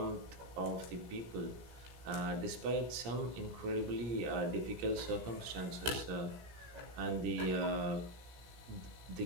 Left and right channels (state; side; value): late; left; 17 ms